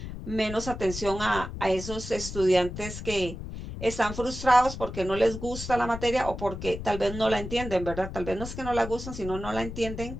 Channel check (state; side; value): noise; left; rumble, 9 dB below the sound